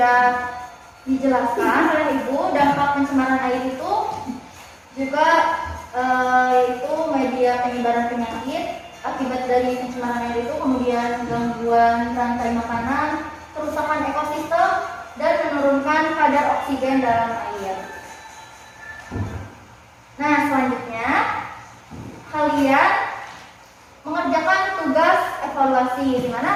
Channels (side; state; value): both; identical; correlation 1.00